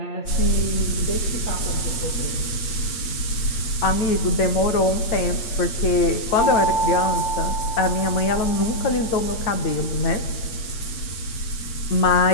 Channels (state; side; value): late; right; 8.8 ms